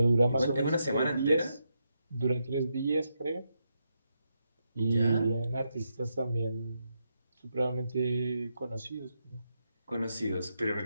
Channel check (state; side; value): inverted; both; correlation -0.83